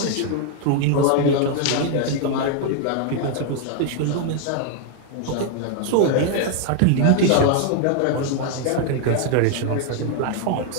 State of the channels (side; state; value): both; different; correlation 0.00